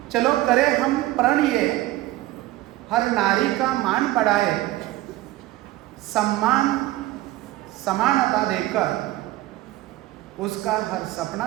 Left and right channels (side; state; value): left; quieter; 16.7 dB